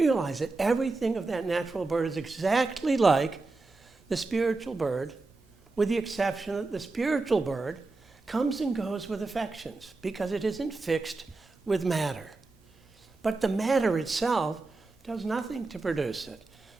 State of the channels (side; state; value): left; quieter; 3.5 dB